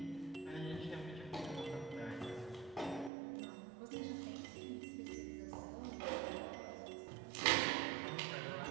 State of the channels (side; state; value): left; drops out; at 3.1 s